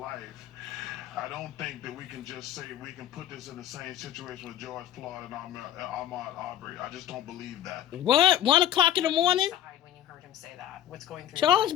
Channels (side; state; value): right; quieter; 11.4 dB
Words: I don't think that we can just say we can put this in the same situation with George Floyd and Ahmaud Arbery. I just don't believe that. What? 1 o'clock in the morning? When you heard him say that, what's going through Charles